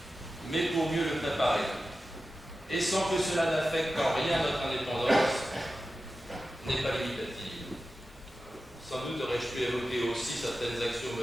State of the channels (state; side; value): normal; both; correlation 0.93